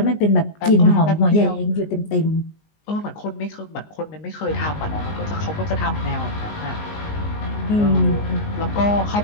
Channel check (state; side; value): late; right; 19 ms